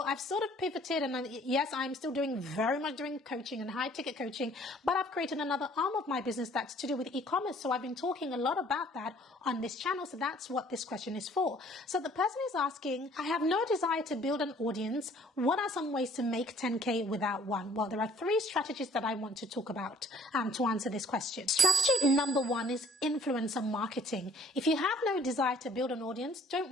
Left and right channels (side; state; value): both; normal; correlation 0.57